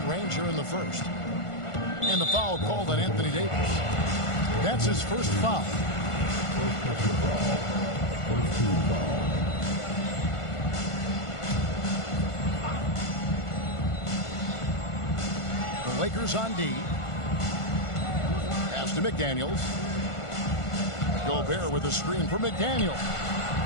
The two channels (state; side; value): late; right; 1.5 ms